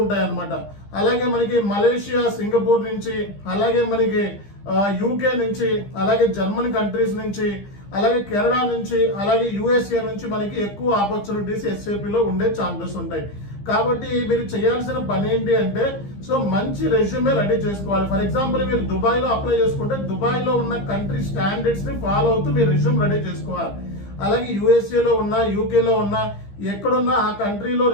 ఉంటాయి అన్నమాట. అలాగే మనకి మలేషియా, సింగపూర్ నుంచి, అలాగే మనకి UK నుంచి, అలాగే జర్మనీ కంట్రీస్ నుంచి, అలాగే కెనడా నుంచి, అలాగే USA నుంచి మనకి ఎక్కువ ఆపర్చునిటీస్ SAP లో ఉండే ఛాన్సెస్ ఉంటాయి. కాబట్టి మీరు చేయాల్సిన పని ఏంటి అంటే, సో మంచి రెజ్యూమే రెడీ చేసుకోవాలి. ఫర్ ఎగ్జాంపుల్ మీరు దుబాయ్ లో అప్లై చేసుకుంటే దుబాయ్ లో ఉన్న కంట్రీ స్టాండర్డ్స్ ని ఫాలో అవుతూ మీరు రెజ్యూమ్ రెడీ చేసుకోవాలి. అలాగే USA లో ఉన్నా, UK లో ఉన్నా, ఎక్కడున్నా ఆ కంట్రీలో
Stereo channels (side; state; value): right; late; 15 ms